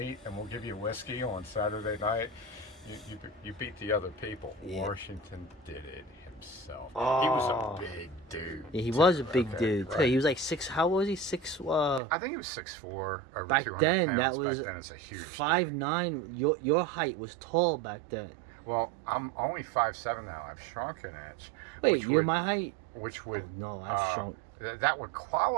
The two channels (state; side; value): drops out; left; at 12.0 s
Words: and we'll give you whiskey on Saturday night. You beat the other people. Yeah. Washington did it himself. He Oh. was a big dude. yeah, he too, was a big okay, dude too. right. He was like six. How was he? Six. I think he was 6'4", over Back 200 then, pounds. that was Back then, it's a huge 5'9". Your height was tall back then. Well, I'm only 5'7" now. I've shrunk an inch. Wait, which you're would- my height? Which would Oh no, I've shrunk. that would